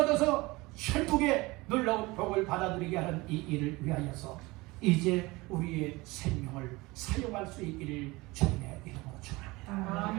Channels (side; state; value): left; quieter; 22.4 dB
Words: 천국의 놀라운 복을 받아들이게 하는 이 일을 위하여서 이제 우리의 생명을 사용할 수 있기를 주님의 이름으로 축원합니다.